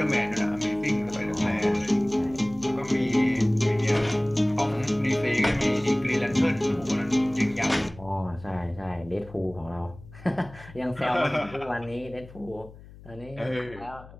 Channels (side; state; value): left; noise; hum, 19 dB below the sound